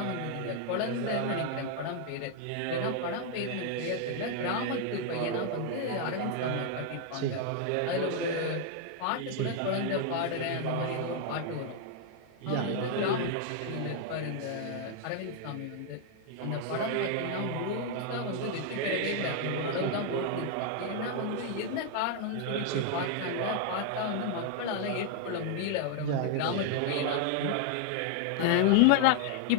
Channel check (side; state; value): both; different; correlation 0.00